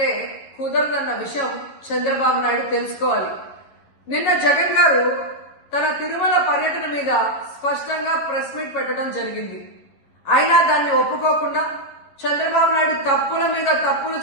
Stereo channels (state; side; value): late; right; 11 ms